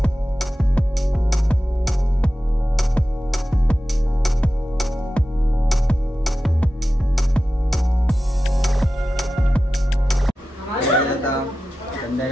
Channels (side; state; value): both; normal; correlation 0.93